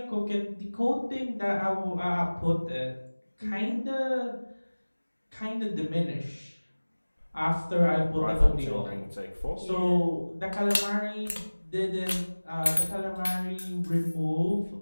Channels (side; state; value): both; inverted; correlation -1.00